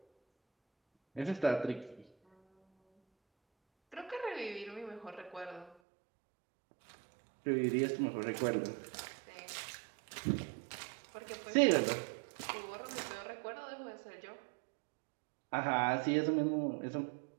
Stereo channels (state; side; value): drops out; left; at 5.8 s